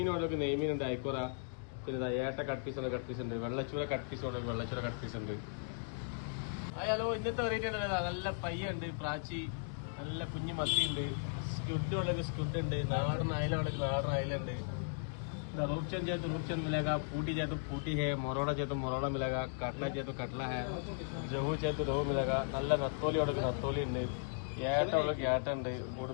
ഉണ്ടെങ്കിൽ നെയ്മീൻ ഉണ്ട്, ഐക്കോറ, പിന്നെ ഏട്ട കട്ട് പീസ് ഉണ്ട്, വെള്ളച്ചൂര കട്ട് പീസ് ഉണ്ടെങ്കിൽ വെള്ളച്ചൂര കട്ട് പീസ് ഉണ്ട്. ഹലോ, ഇന്നത്തെ വെറൈറ്റി ഉണ്ട്. നല്ല പയ്യുണ്ട്, പ്രാച്ചി, നല്ല കുഞ്ഞു മത്തിയുണ്ട്, സ്റ്റുഡ് ഉണ്ടെങ്കിൽ സ്റ്റുഡ് ഉണ്ട്, നാടൻ അയല ഉണ്ടെങ്കിൽ നാടൻ അയലുണ്ട്. रूप चेंज मिलेगा, पूटी चाहिए तो पूटी है, मोरोड़ा चाहिए तो मोरोड़ा मिलेगा, काटला चाहिए तो काटला है, रोहू चाहिए तो रोहू मिलेगा. നല്ല നത്തോലി ഉണ്ടെങ്കിൽ നത്തോലി ഉണ്ട്, ഏട്ട ഉണ്ടെങ്കിൽ ഏട്ട ഉണ്ട്,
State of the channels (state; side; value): silent; right; digital silence